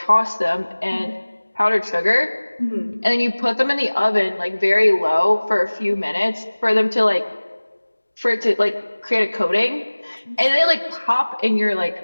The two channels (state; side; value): inverted; both; correlation -1.00